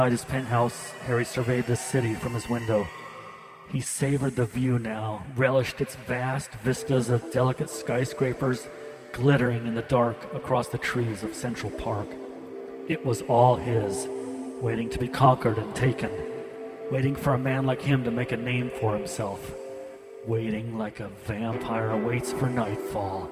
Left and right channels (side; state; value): both; identical; correlation 1.00